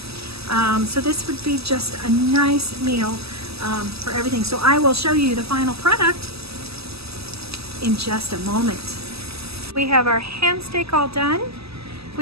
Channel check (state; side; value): late; left; 0.78 ms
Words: So this would be just a nice meal for everything. So I will show you the final product in just a moment. We have our ham steak all done.